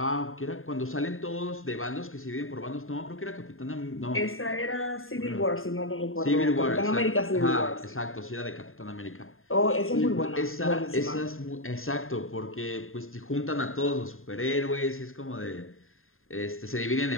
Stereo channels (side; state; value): right; late; 0.61 ms